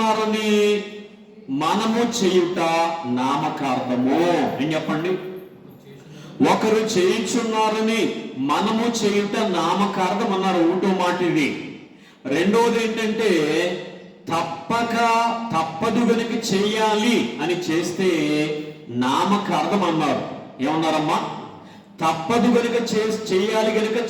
మనము చేయుట నామకార్థము. ఏం చెప్పండి? ఒకరు చేయుచున్నారని మనము చేయుట నామకార్థం అన్నారు. ఒకటో మాట ఇది. రెండోది ఏంటంటే తప్పదు గనుక చెయ్యాలి అని చేస్తే నామకార్థం అన్నారు. ఏమన్నారమ్మా? తప్పదు గనుక చెయ్యాలి గనుక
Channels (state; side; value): identical; both; correlation 1.00